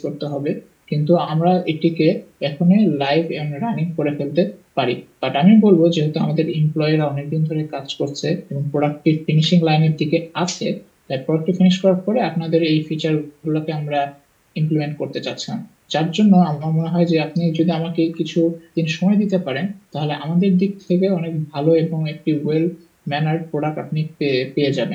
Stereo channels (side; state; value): both; identical; correlation 1.00